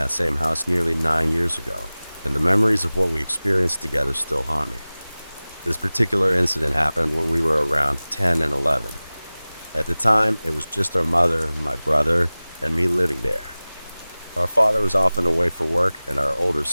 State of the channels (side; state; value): both; inverted; correlation -0.98